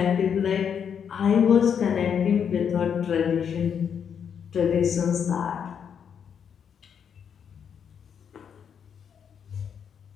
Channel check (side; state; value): right; quieter; 7.6 dB